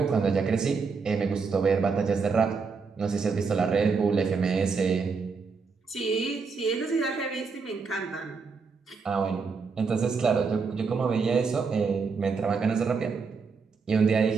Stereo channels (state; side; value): quieter; left; 5.0 dB